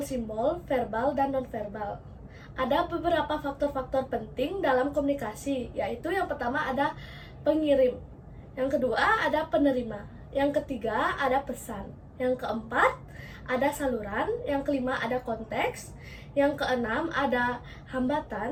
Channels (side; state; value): both; identical; correlation 1.00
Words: verbal dan nonverbal. Ada beberapa faktor-faktor penting dalam komunikasi, yaitu yang pertama ada pengirim, yang kedua ada penerima, yang ketiga ada pesan, yang keempat ada saluran, yang kelima ada konteks, yang keenam ada